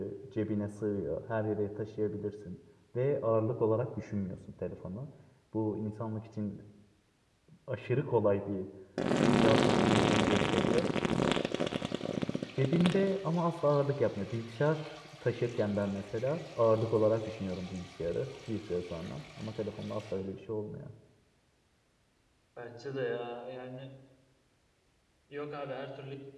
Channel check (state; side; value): identical; both; correlation 1.00